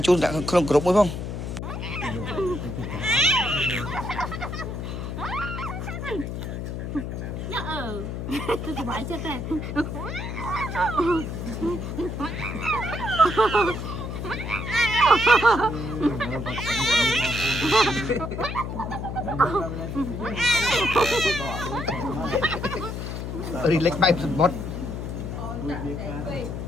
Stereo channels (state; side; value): noise; left; hum, 5 dB below the sound